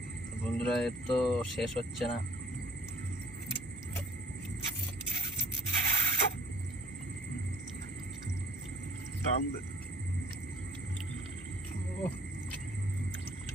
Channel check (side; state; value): both; normal; correlation 0.55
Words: বন্ধুরা এর তো শেষ হচ্ছে না।